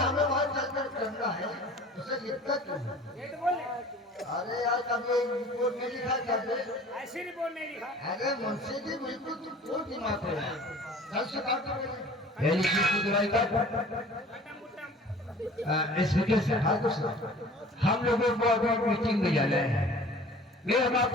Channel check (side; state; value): both; normal; correlation 0.46